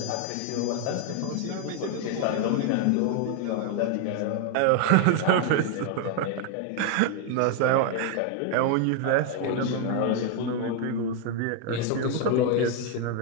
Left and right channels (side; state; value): both; different; correlation 0.00